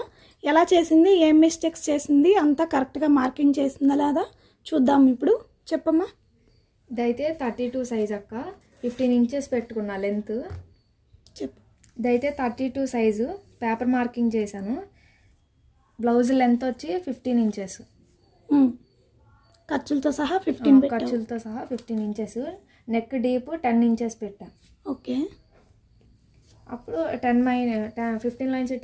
ఎలా చేసింది, ఏం మిస్టేక్స్ చేసింది, అంతా కరెక్ట్గా మార్కింగ్ చేసిందా లేదా చూద్దాం. ఇప్పుడు చెప్పమ్మా. ఇదైతే 32 సైజ్ అక్క, 15 ఇంచెస్ పెట్టుకున్నా లెంత్. చెప్పు. ఇదైతే 32 సైజు పేపర్ మార్కింగ్ చేశాను. బ్లౌజ్ లెంత్ వచ్చి 15 ఇంచెస్, ఖర్చులతో సహా 15 ఖర్చులతో సహా 15 ఇంచెస్. నెక్ డీప్ 10 ఇంచెస్ పెట్టా. ఓకే. అప్పుడు 15 లైన్స్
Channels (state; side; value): identical; both; correlation 1.00